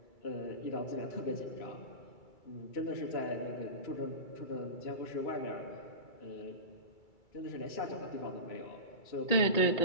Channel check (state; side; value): late; right; 2.3 ms